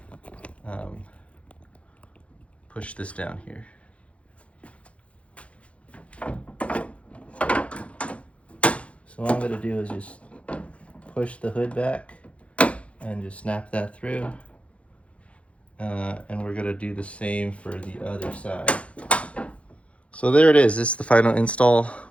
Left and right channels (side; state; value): right; late; 0.062 ms